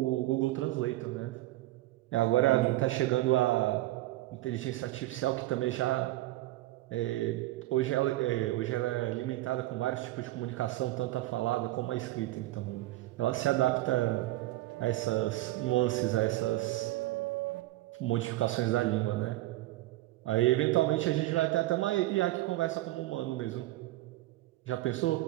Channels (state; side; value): quieter; left; 17.2 dB